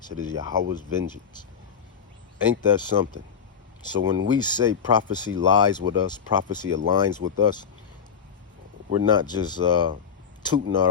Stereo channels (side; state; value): right; quieter; 6.9 dB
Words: It is Yahweh's vengeance. Ain't that something? So when we say prophecy lies with us, prophecy aligns with us, we're not just tooting